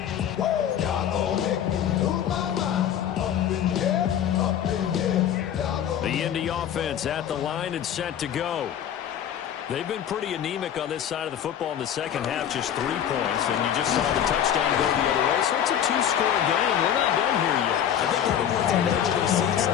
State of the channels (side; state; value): right; quieter; 9.7 dB